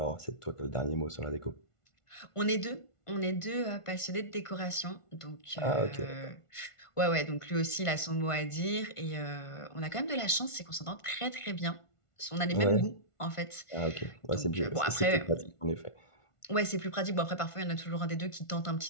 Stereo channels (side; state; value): right; late; 1.5 ms